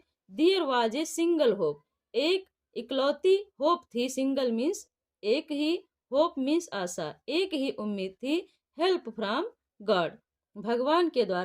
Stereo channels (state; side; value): identical; both; correlation 1.00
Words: there was a single hope एक इकलौती होप थी सिंगल मीन्स एक ही होप मीन्स आशा एक ही उम्मीद थी हेल्प फ्रॉम गॉड भगवान के